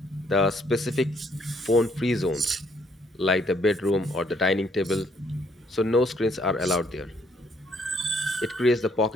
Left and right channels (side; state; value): both; normal; correlation 0.68